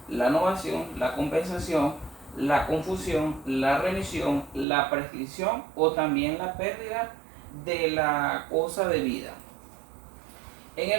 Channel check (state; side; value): drops out; left; at 4.7 s